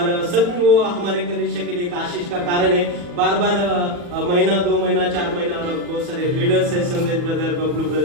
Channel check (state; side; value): late; left; 40 ms